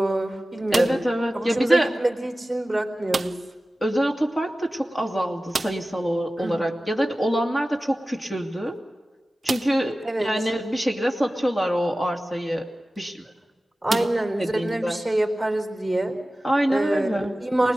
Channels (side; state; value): both; normal; correlation 0.96